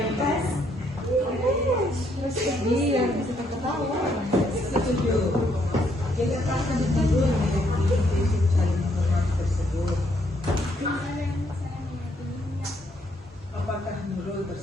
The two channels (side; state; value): both; normal; correlation 0.71